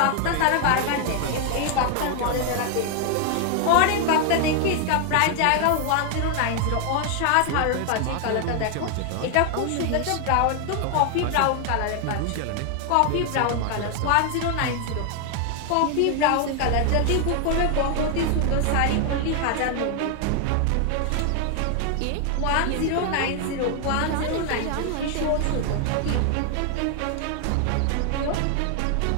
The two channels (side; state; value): both; different; correlation 0.00